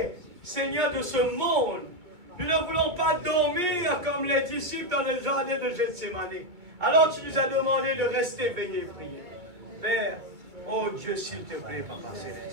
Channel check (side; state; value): left; late; 2.2 ms